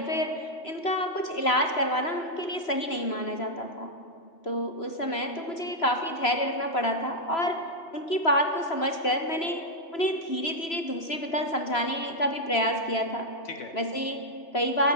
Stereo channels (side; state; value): right; late; 3.0 ms